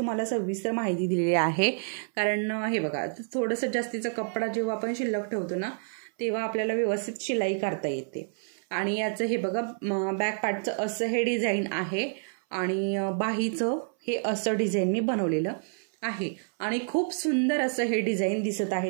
सविस्तर माहिती दिलेली आहे. कारण हे बघा थोडंसं जास्तीचा कपडा जेव्हा आपण शिल्लक ठेवतो ना तेव्हा आपल्याला व्यवस्थित शिलाई करता येते. आणि याचं हे बघा बॅक पार्टचं असं हे डिझाईन आहे आणि बाहीचं हे असं डिझाईन मी बनवलेलं आहे आणि खूप सुंदर असं हे डिझाईन दिसत आहे.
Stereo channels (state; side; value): silent; left; 59 dB below the other